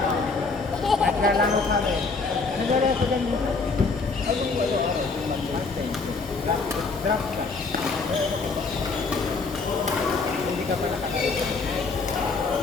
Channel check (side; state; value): right; quieter; 4.2 dB